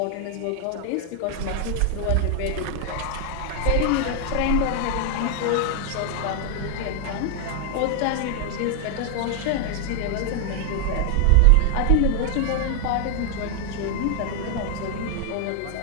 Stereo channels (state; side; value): different; both; correlation 0.00